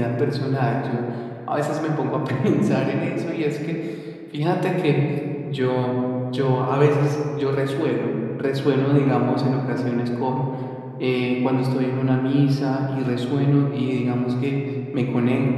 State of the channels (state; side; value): identical; both; correlation 1.00